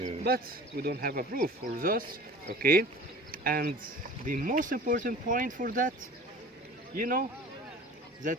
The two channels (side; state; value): both; normal; correlation 0.42